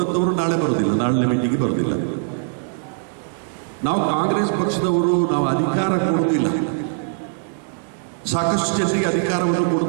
ನಾಳೆ ಬರೋದಿಲ್ಲ, ನಾಳೆ ಮೀಟಿಂಗಿಗೆ ಬರೋದಿಲ್ಲ. ನಾವು ಕಾಂಗ್ರೆಸ್ ಪಕ್ಷದವರು ನಾವು ಅಧಿಕಾರ ಕೊಡೋದಿಲ್ಲ, ಸಾಕಷ್ಟು ಜನರಿಗೆ ಅಧಿಕಾರವನ್ನು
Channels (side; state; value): left; silent; digital silence